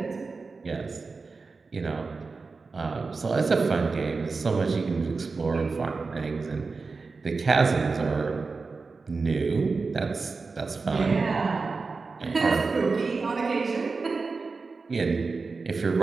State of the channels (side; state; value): left; quieter; 4.3 dB